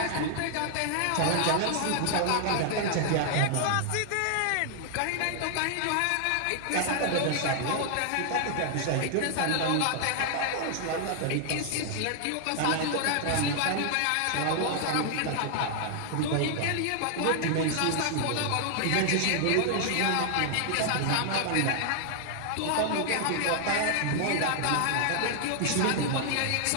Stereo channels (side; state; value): both; different; correlation 0.00